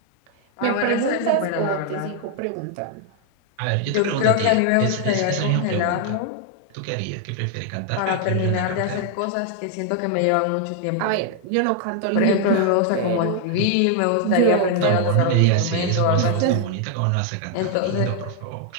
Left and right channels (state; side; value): different; both; correlation 0.00